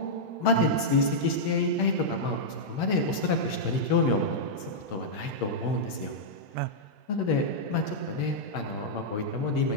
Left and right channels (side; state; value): right; late; 9.6 ms